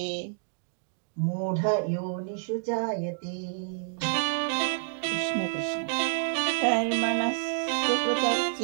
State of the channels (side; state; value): left; silent; digital silence